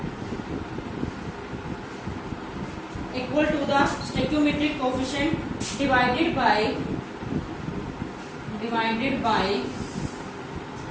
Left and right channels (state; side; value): identical; both; correlation 1.00